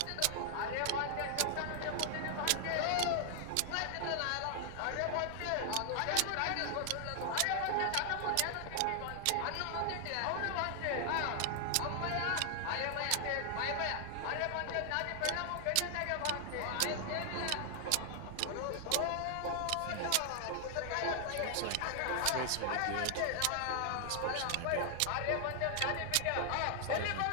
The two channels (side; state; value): both; different; correlation 0.00